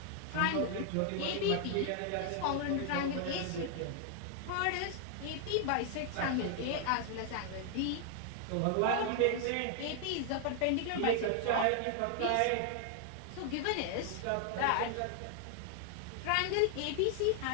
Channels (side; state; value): both; different; correlation 0.00